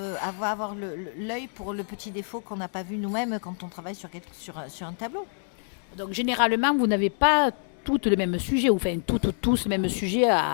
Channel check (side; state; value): right; silent; digital silence